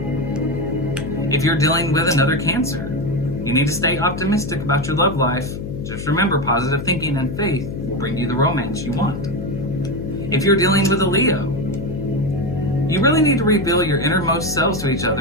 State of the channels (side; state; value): left; noise; hum, 7 dB below the sound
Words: If you're dealing with another Cancer, you need to stay optimistic about your love life. Just remember, positive thinking and faith will bring you the romance you want. If you're dealing with a Leo, you really need to reveal your innermost selves to each